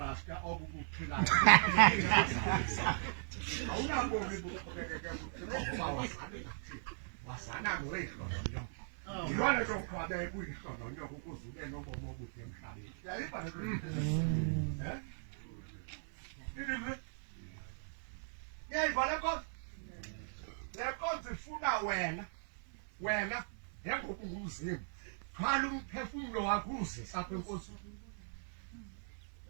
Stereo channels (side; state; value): left; silent; 52 dB below the other